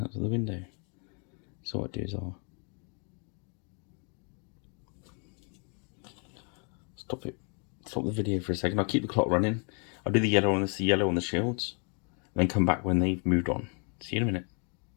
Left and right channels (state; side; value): quieter; right; 38.0 dB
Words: out of the window. So what I do is I'll stop the video for a second. I'll keep the clock running. I'll do the yellow on the shields, and then come back when they've moved on. See you in a minute.